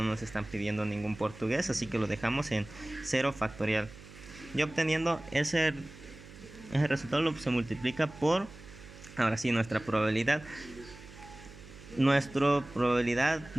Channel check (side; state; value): right; noise; hum, 18 dB below the sound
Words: nos están pidiendo ningún portugués, así que lo dejamos en 0 factorial. Y obteniendo ese resultado se multiplica por, ahora sí, nuestra probabilidad. Nuestra probabilidad